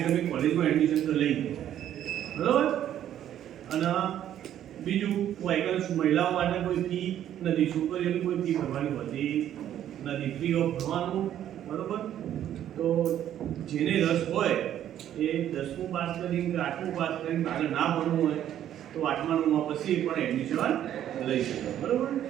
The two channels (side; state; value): left; quieter; 11.0 dB